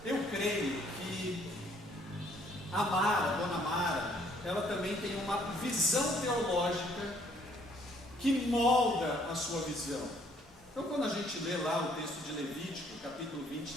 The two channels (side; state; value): both; normal; correlation 0.63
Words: eu creio que a Mara, a dona Mara, ela também tem uma visão teológica que molda a sua visão. Então, quando a gente lê lá o texto de Levítico, capítulo